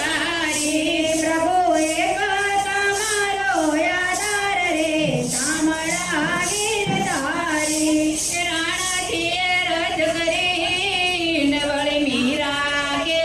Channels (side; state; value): right; noise; hum, 18 dB below the sound